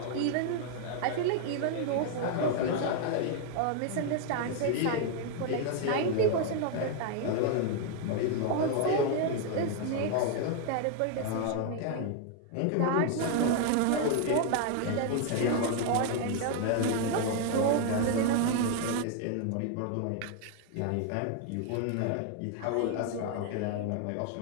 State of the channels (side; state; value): both; different; correlation 0.00